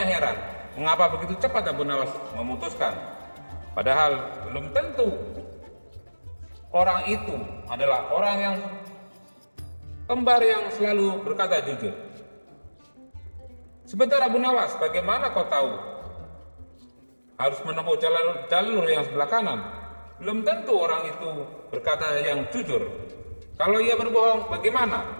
heran, mengapa begitu cepat Abu Nawas memutuskan, padahal belum tentu orang itu adalah orang yang kembar yang selalu berkata jujur. "Sebentar Abu Nawas, bagaimana kau tahu harus menempuh jalur yang sebelah kanan? belum tentu orang itu berkata yang jujur. Kalau ia berbohong, bagaimana?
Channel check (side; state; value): both; inverted; correlation -1.00